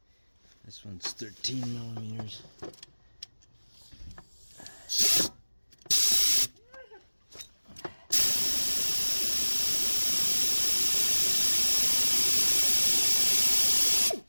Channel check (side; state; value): both; inverted; correlation -1.00